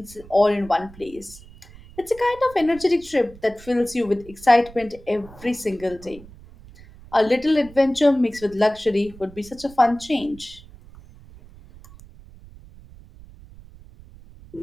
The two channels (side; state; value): right; noise; rumble, 20 dB below the sound